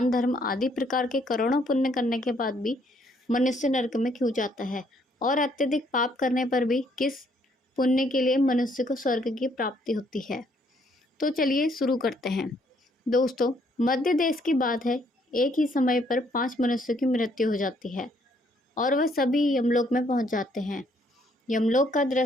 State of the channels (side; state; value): both; normal; correlation 0.68